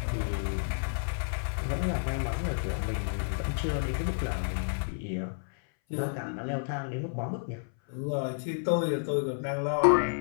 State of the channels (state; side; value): silent; right; 57 dB below the other